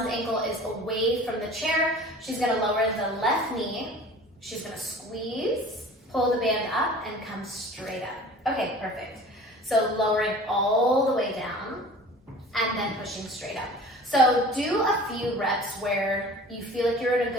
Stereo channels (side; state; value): both; normal; correlation 0.43